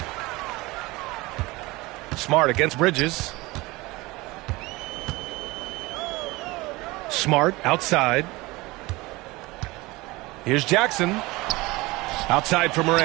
Smart against Bridges. Smart outside. Here's Jackson. Outside for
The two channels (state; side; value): quieter; left; 21.8 dB